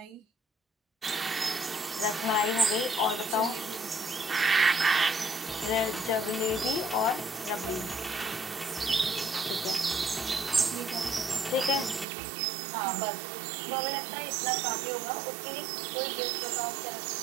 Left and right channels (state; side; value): drops out; left; at 12.1 s